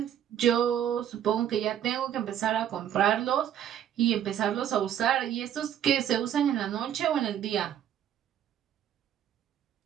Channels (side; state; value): left; quieter; 10.2 dB